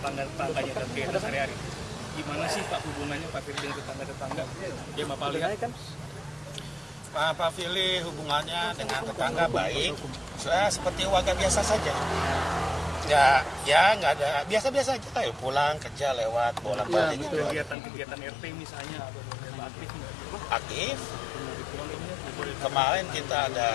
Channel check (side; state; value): right; drops out; at 17.8 s